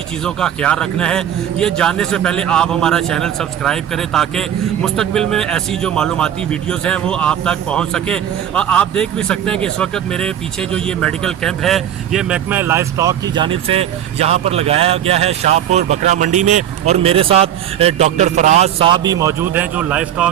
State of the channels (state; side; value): quieter; left; 10.4 dB